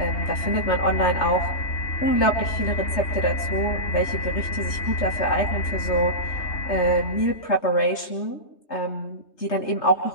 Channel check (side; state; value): right; late; 3.2 ms